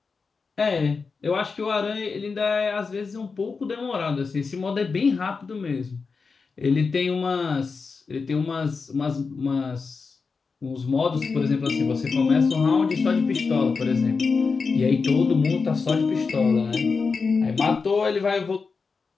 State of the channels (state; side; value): quieter; right; 4.8 dB